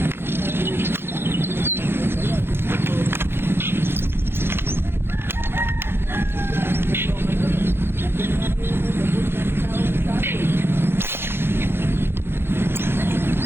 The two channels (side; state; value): left; late; 0.11 ms